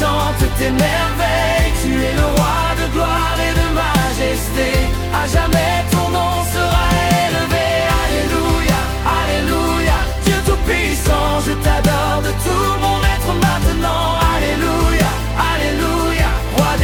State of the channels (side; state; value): both; identical; correlation 1.00